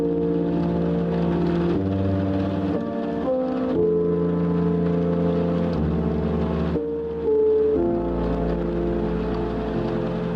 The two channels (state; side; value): identical; both; correlation 1.00